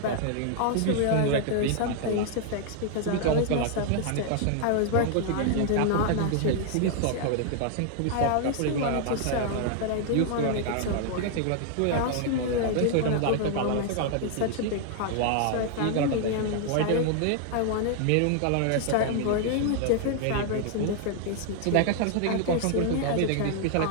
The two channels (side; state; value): both; different; correlation 0.00